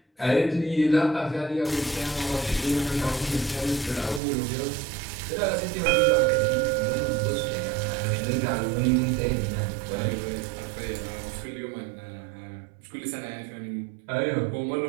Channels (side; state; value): left; drops out; at 4.2 s